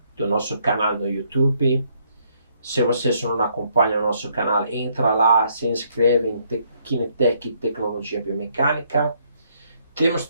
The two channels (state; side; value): inverted; both; correlation -0.70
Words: do nosso canal no YouTube. Se vocês não acompanham o nosso canal, entra lá, se inscreve em Kinetec Tecnologia Biomecânica. Temos